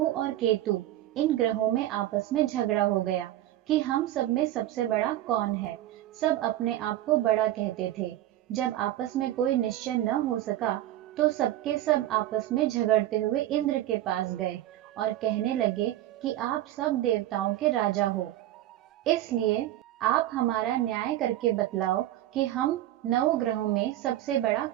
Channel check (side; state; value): left; quieter; 13.9 dB